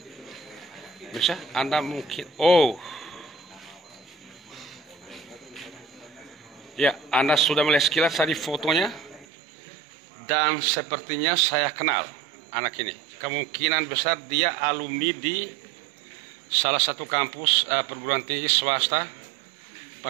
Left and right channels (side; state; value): left; drops out; at 9.2 s